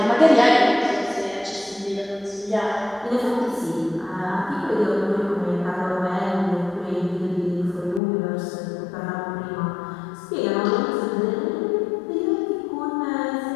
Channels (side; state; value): right; drops out; at 8.0 s